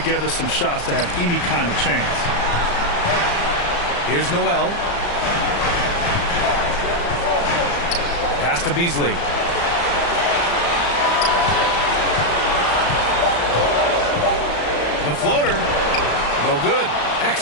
some shots to have any kind of chance. Here's Noel. Pass to Beasley. The floater. No good.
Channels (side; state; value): right; late; 34 ms